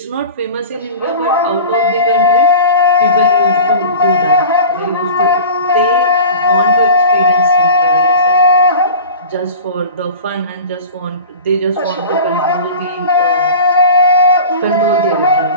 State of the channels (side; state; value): both; inverted; correlation -0.37